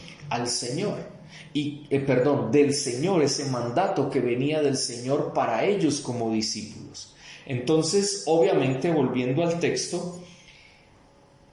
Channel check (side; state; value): both; identical; correlation 1.00